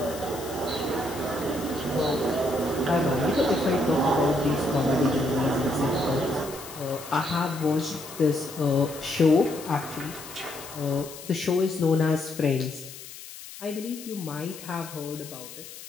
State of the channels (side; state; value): left; noise; hiss, 14 dB below the sound